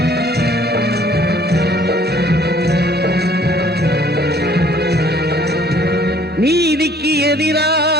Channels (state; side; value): normal; both; correlation 0.57